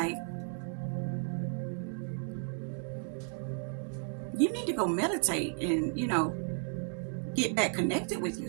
you need to go meditate and, get back connected with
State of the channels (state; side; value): silent; left; 55 dB below the other